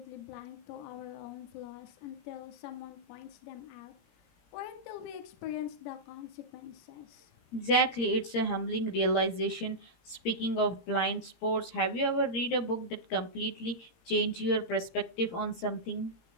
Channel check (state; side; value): late; right; 17 ms